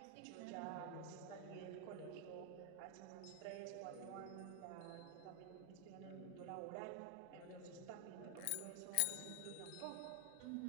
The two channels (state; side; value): different; both; correlation 0.00